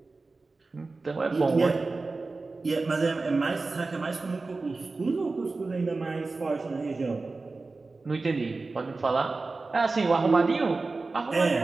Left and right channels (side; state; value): left; quieter; 3.7 dB